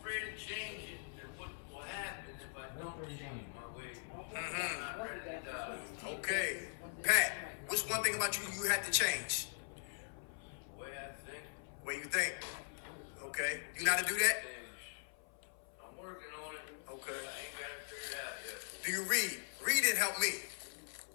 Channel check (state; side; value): silent; right; 50 dB below the other